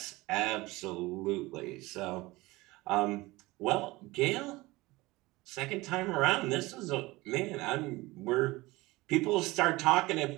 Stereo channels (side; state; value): left; quieter; 20.8 dB